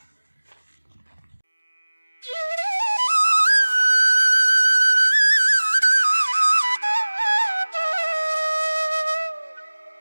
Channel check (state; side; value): inverted; both; correlation -1.00